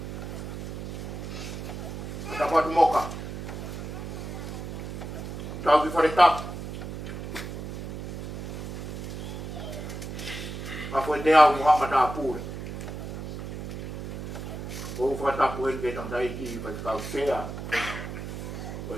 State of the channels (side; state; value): right; noise; hum, 7 dB below the sound